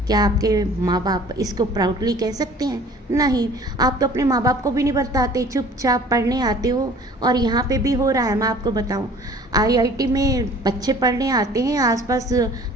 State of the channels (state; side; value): normal; both; correlation 0.49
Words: क्या आपके माँ बाप इसको प्राउडली कह सकते हैं? नहीं। आप तो अपने माँ बाप को भी नहीं बताते, चुपचाप पढ़ने आते हो। और यहाँ पे भी हो रहा है, मैं आपको बताऊँ, आईआईटी में बच्चे पढ़ने आते हैं, आसपास